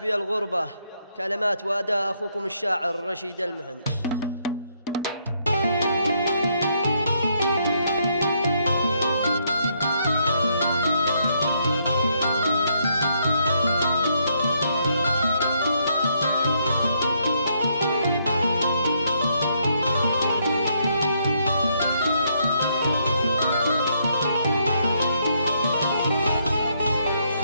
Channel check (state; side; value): inverted; both; correlation -0.73